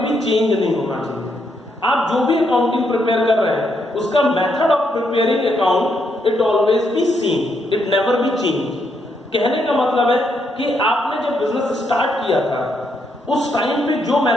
चेंज नहीं होना चाहिए। आप जो भी अकाउंटिंग प्रिपेयर कर रहे हैं उसका method of preparing account it always be same, it never be change. कहने का मतलब है कि आपने जब बिजनेस स्टार्ट किया था उस टाइम पे जो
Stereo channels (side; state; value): both; normal; correlation 0.77